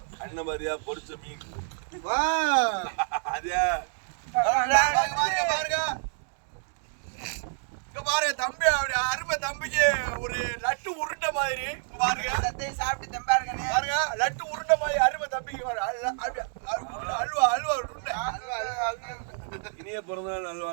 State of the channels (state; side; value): silent; left; digital silence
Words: அண்ணன் மாதிரியா பொரிச்ச மீன் அதே பாருங்க தம்பி அருமை தம்பிக்கு ஒரு லட்டு உருண்டை மாதிரி பாருங்க. சாப்பிட்டு தம்பாருங்க பாருங்க. லட்டு உருண்டை மாதிரி அருமை தம்பிக்கு அல்வா உருண்டை. இனிய பிறந்தநாள்